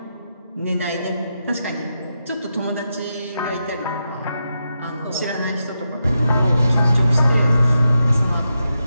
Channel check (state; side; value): inverted; both; correlation -0.86